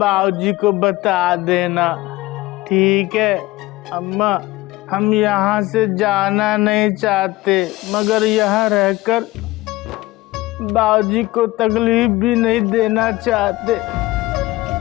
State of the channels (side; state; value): right; quieter; 19.0 dB